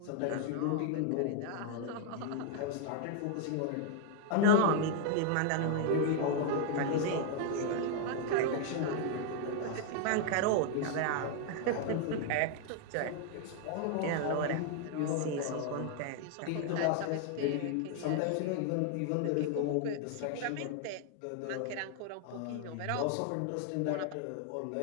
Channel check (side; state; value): both; different; correlation 0.00